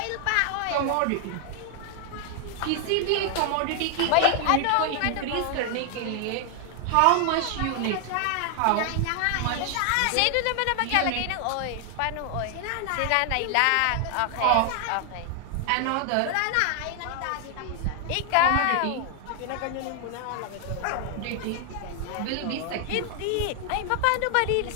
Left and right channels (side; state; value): both; different; correlation 0.00